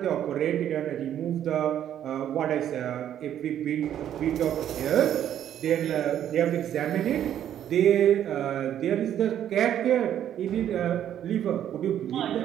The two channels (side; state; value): left; quieter; 10.5 dB